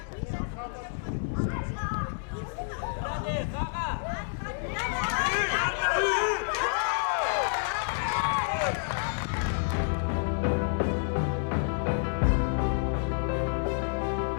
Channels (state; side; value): silent; right; digital silence